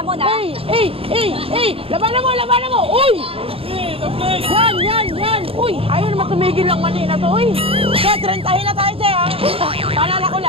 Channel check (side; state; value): left; late; 0.27 ms